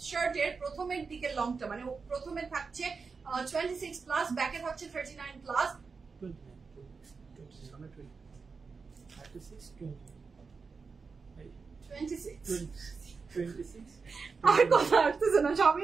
শার্টের প্রথমের দিকের লংটা মানে প্রথমে থাকছে 26 প্লাস, ব্যাকে থাকছে 39 প্লাস। আর কথা আসতেছে না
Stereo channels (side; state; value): left; quieter; 4.9 dB